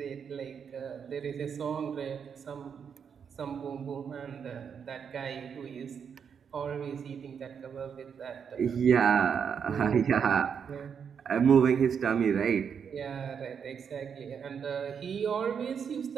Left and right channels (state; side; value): quieter; left; 7.1 dB